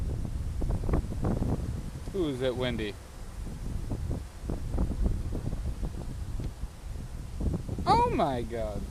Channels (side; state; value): both; identical; correlation 1.00